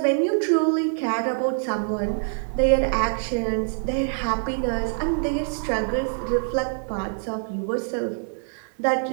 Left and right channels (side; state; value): left; silent; 57 dB below the other